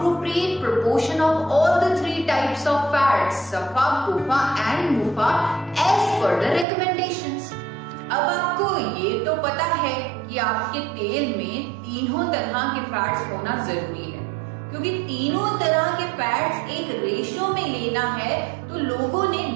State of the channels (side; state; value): left; drops out; at 6.7 s